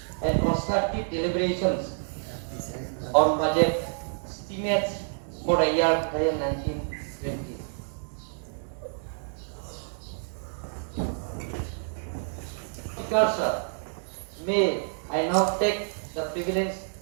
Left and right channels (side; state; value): left; silent; digital silence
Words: and constructive deliberations on budget estimates for the year 2019-20. Sir, may I now take the privilege